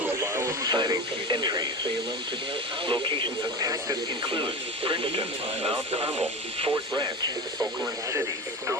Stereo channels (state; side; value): normal; both; correlation 0.27